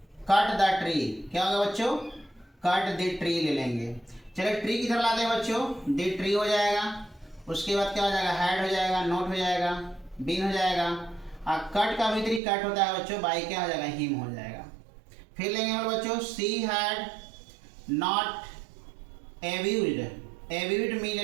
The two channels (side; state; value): left; drops out; at 12.4 s